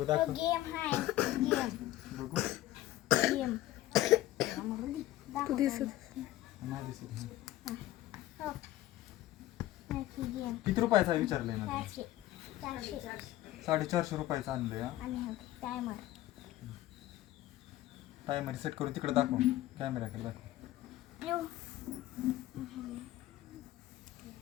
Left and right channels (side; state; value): right; quieter; 15.3 dB